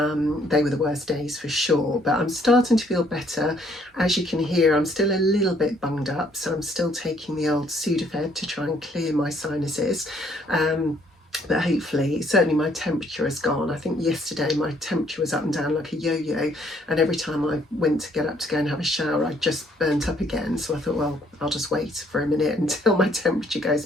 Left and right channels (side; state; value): both; normal; correlation 0.65